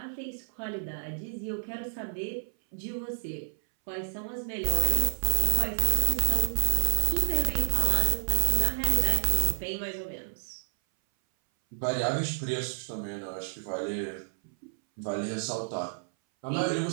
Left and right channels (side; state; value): left; silent; 58 dB below the other